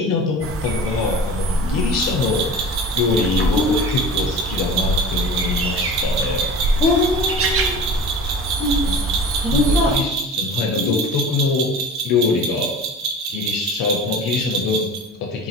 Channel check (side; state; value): both; normal; correlation 0.37